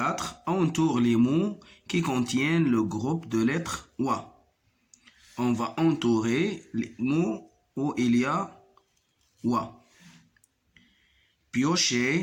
Entoure les mots qui contiennent le groupe de lettres wa. On va entourer les mots où il y a wa.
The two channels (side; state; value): both; identical; correlation 1.00